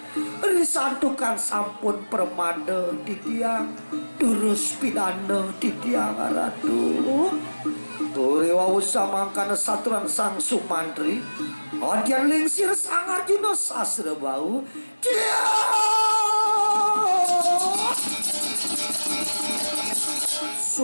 risantukan sampun Pramada Ditya durus pidana Ditya Ratu Uri wau samangkana saturan Sang Sumantri adian lingsir Sang Arjuna sasra bau dia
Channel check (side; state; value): both; inverted; correlation -1.00